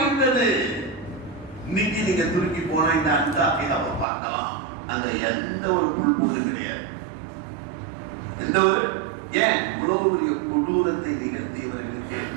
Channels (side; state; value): left; drops out; at 4.0 s